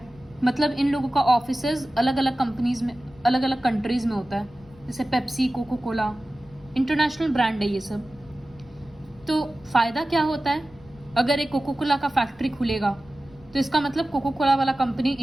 मतलब इन लोगों का ऑफिसेज अलग अलग कंपनीज में, अलग अलग कंट्रीज में होता है, जैसे Pepsi, Coca Cola, international brand है ये सब। तो फायदा क्या होता है, अगर एक कोको कोला का फैक्ट्री खुलेगा तो इसका मतलब कोको कोला वाला कंपनी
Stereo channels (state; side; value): noise; left; rumble, 24 dB below the sound